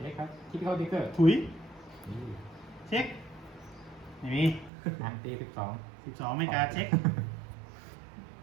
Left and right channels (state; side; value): drops out; left; at 4.7 s